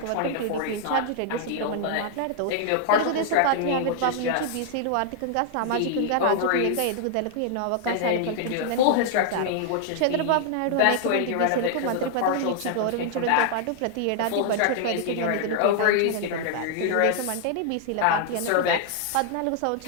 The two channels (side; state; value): both; different; correlation 0.00